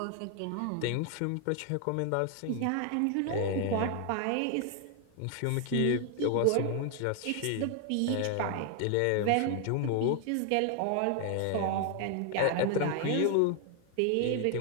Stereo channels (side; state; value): both; different; correlation 0.00